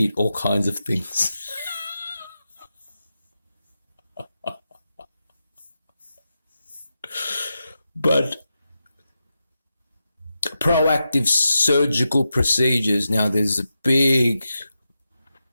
all kinds of things. But proactive surgical procedures, now there's a big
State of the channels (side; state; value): both; inverted; correlation -0.89